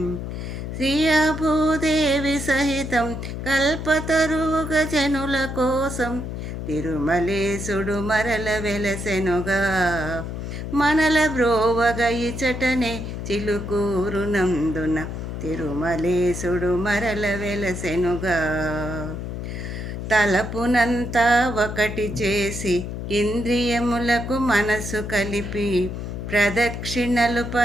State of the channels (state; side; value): noise; left; hum, 6 dB below the sound